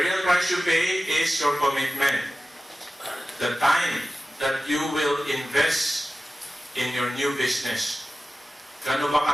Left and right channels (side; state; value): both; normal; correlation 0.95